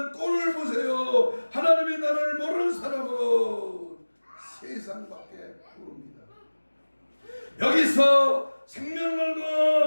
꼴을 보세요. 하나님의 나라를 모르는 사람은 세상밖에 모릅니다. 여기서 생명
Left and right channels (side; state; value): both; inverted; correlation -1.00